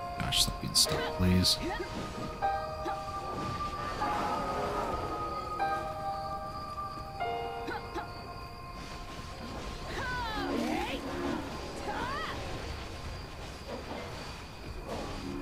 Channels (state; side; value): identical; both; correlation 1.00